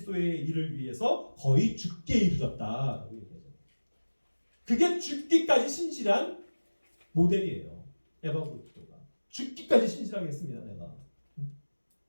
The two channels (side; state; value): both; inverted; correlation -1.00